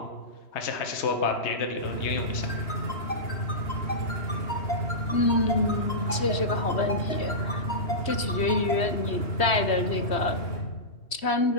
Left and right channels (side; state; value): right; late; 3.1 ms